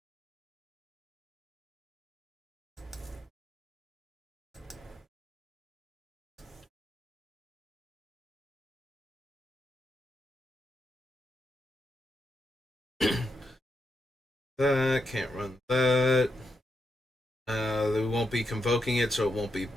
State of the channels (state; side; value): normal; both; correlation 0.83